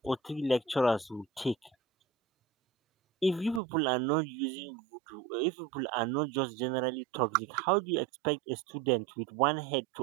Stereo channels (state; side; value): drops out; left; at 3.6 s